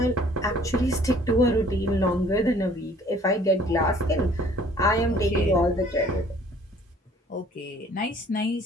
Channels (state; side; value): normal; both; correlation 0.55